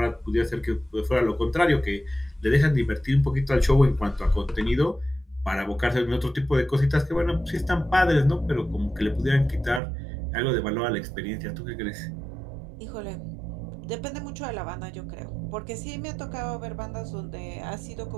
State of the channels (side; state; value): left; drops out; at 9.8 s